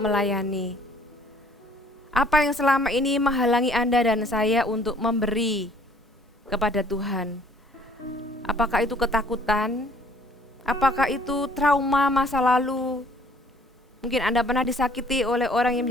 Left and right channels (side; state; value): both; normal; correlation 0.58